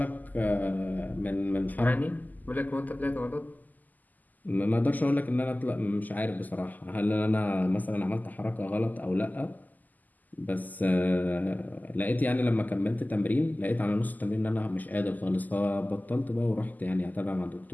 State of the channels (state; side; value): late; right; 0.083 ms